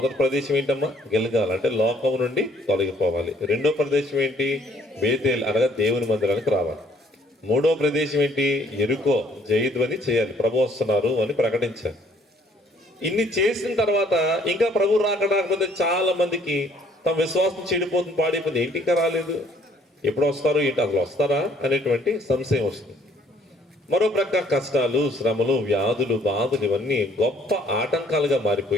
ప్రదేశం ఏంటమ్మా? గిల్గాల్, అంటే లోకం నుండి తొలగిపోవాలి. రెండో ప్రదేశం ఏంటి? బేతేల్, అనగా దేవుని మందిరానికి రావాలి. మూడో ప్రదేశం ఏంటి? ఎరుకో, జయధ్వని చేయాలి, ప్రభు వస్తున్నారు అని ప్రకటించాలి. ఇన్ని చేసిన తర్వాత ఇంకా ప్రభు రాకడాకపోతే చాలా మందికి తమ విశ్వాసం చెడిపోతుంది, పాడైపోతుంది. ఏంటి ఇంకా రాలేదు, ఎప్పుడు వస్తారు, ఏంటి అసలు వస్తారా అనేటువంటి సంశయం వస్తుంది. మరో ప్రక్క కష్టాలు, శ్రమలు, వ్యాధులు, బాధలు ఇవన్నీ గొప్ప ఆటంకాలుగా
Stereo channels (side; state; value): both; normal; correlation 0.63